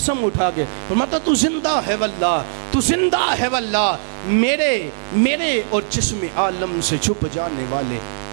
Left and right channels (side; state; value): left; silent; 66 dB below the other